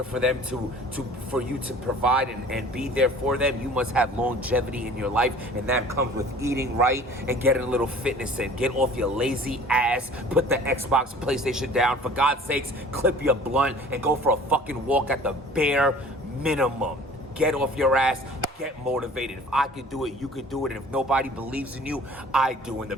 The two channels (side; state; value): both; normal; correlation 0.47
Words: for them for you to provide and be there for them, you must have longevity in your life. And that comes with eating right and getting a little fitness in. Get off your lazy ass. Put the Xbox, PlayStation down. For God's sakes, clip your blunt and go for a fucking walk at the bare minimum. Get off your ass. Get motivated. If I could do it, you could do it. And if nobody believes in you, I do. And the